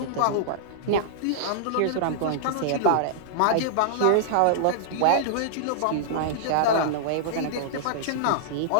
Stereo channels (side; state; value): both; different; correlation -0.02